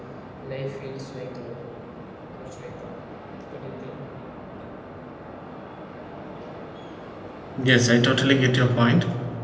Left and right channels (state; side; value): identical; both; correlation 1.00